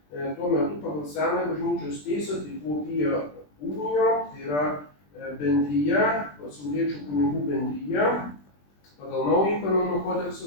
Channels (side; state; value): right; late; 20 ms